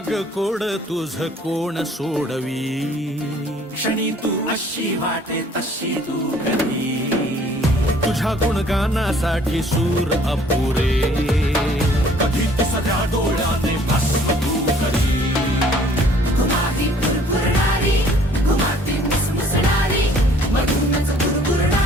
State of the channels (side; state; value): both; normal; correlation 0.57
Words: कोड तुझ कोण सोडवी, क्षणी तू अशी वाटे तशी तू कधी, तुझ्या गुणगानासाठी सूर अपुरे, कधी तुझ्या डोळ्याने भस्म तू